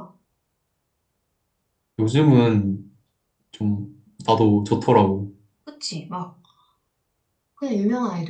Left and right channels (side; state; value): both; identical; correlation 1.00